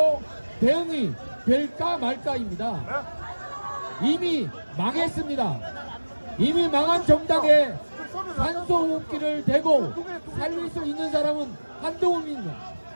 대응이 될까 말까입니다. 이미 망했습니다. 이미 망한 정당에 산소호흡기를 대고 살릴 수 있는 사람은 한동훈입니다.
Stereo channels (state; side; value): inverted; both; correlation -1.00